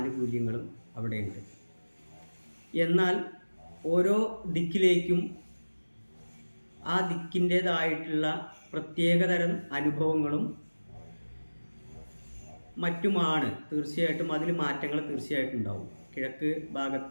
അവിടെയുണ്ട്. എന്നാൽ ഓരോ ദിക്കിലേക്കും ആ ദിക്കിൻ്റേതായിട്ടുള്ള പ്രത്യേകതരം അനുഭവങ്ങളും മറ്റുമാണ്. തീർച്ചയായിട്ടും അതിൽ മാറ്റങ്ങൾ തീർച്ചയായിട്ടും ഉണ്ടാവും. കിഴക്ക്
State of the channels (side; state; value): both; inverted; correlation -1.00